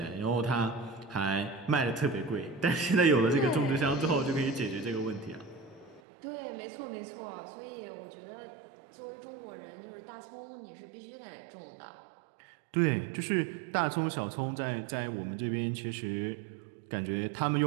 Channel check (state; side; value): drops out; left; at 6.0 s